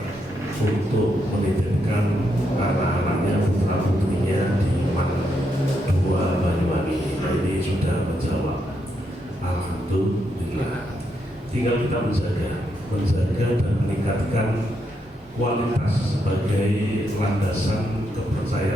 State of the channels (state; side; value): normal; both; correlation 0.80